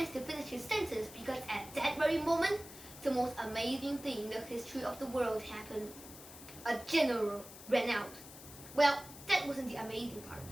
to finish his sentence because at that very moment, the most amazing thing in the history of the world happened. A general ran out. Well, that wasn't the amazing part,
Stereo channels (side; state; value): left; noise; hiss, 15 dB below the sound